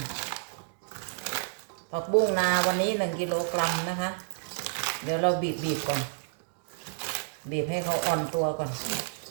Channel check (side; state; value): left; silent; digital silence